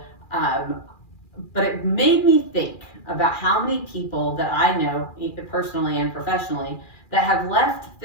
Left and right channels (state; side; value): late; right; 2.4 ms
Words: but it made me think about how many people that I know, personally and professionally, that have left